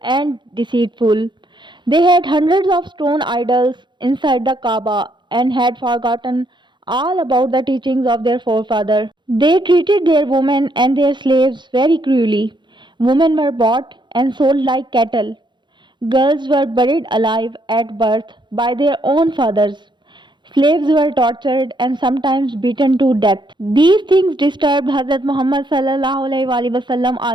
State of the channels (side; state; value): left; late; 0.22 ms